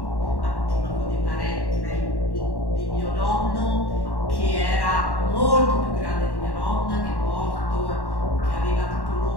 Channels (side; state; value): right; late; 1.1 ms